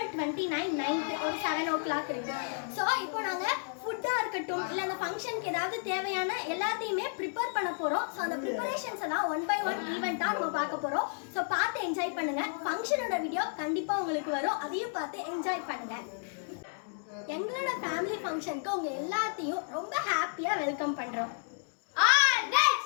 29 நைட்டு ஒரு 7 o'clock இருக்கு. ஸோ இப்போ நாங்கள் ஃபுட்டாக இருக்கட்டும், இல்லை அந்த ஃபங்க்ஷனுக்கு ஏதாவது தேவையான எல்லாத்தையுமே ப்ரிப்பேர் பண்ண போகிறோம். ஸோ அந்த ப்ரிப்பரேஷன்ஸ் எல்லாம் 1 by 1 ஈவெண்ட்டாக நம்ம பார்க்க போகிறோம். ஸோ பார்த்து என்ஜாய் பண்ணுங்க. ஃபங்க்ஷனோட வீடியோ கண்டிப்பாக உங்களுக்கு வரும், அதையும் பார்த்து என்ஜாய் பண்ணுங்க. எங்களோட ஃபேமிலி ஃபங்க்ஷனுக்கு உங்க எல்லாத்தையும் ரொம்ப ஹாப்பியாக வெல்கம் பண்ணுறோம்.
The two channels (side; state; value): right; silent; digital silence